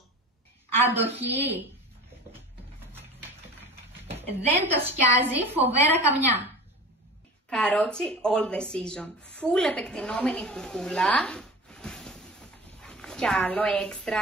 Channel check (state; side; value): normal; both; correlation 0.36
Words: Αντοχή. Δεν το σκιάζει φοβέρα καμιά. Καρότσι all the season. Full επεκτηνόμενη κουκούλα. Κι άλλο